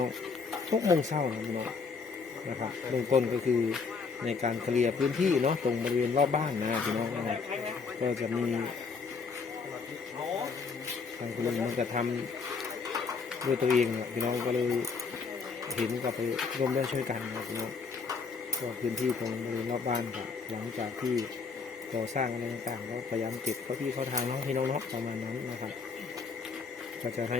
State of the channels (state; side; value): quieter; right; 5.0 dB